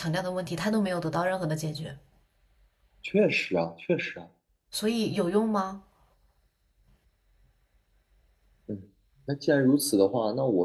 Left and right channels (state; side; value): identical; both; correlation 1.00